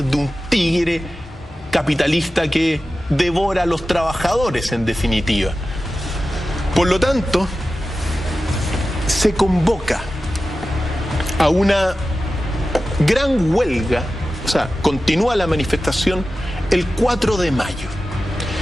de un tigre capitalista que devora a los trabajadores, en definitiva. Por lo tanto, se convoca a una gran huelga, o sea, continúa la manifestación el 4 de mayo.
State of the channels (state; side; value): normal; both; correlation 0.94